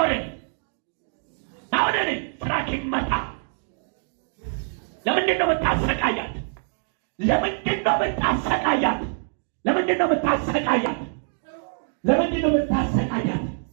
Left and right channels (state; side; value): silent; left; digital silence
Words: ናውደኔ ስራክ ይመታ። ለምንድን ነው የምታሰቃያት? ለምንድን ነው የምታሰቃያት? ለምንድን ነው የምታሰቃያት? ለምንድን ነው የምታሰቃያት?